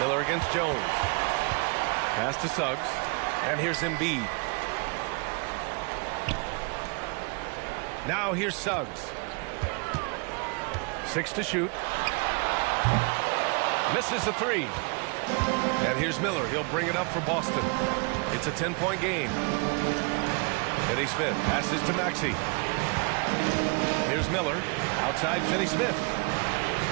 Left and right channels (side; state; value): left; quieter; 33.4 dB